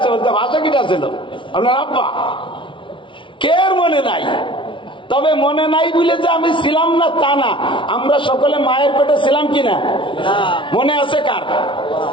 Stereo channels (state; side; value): late; right; 0.25 ms